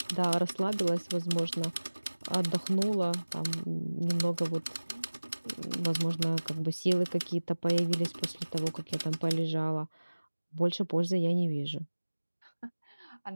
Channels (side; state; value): both; inverted; correlation -1.00